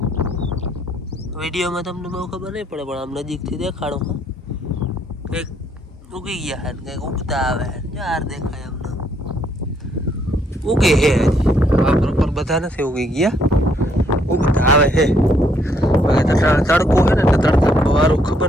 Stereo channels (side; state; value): both; normal; correlation 0.70